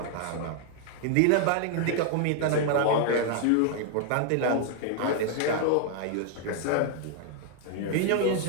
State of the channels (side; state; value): both; different; correlation 0.00